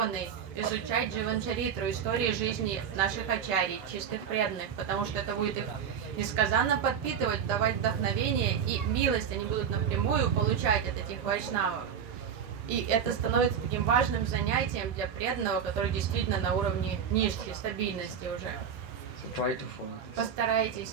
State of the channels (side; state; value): left; quieter; 7.7 dB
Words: изучать Дживанчаритру, истории жизни наших ачарий, чистых преданных, потому что это будет их несказанно подпитывать, давать вдохновение и милость они будут напрямую получать от этих вайшнавов. И это становится таким важным занятием для преданного, который действительно на уровне ништи, стабильности уже. So try to follow this. Постарайтесь